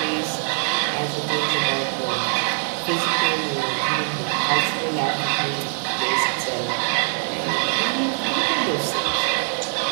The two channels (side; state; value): left; silent; digital silence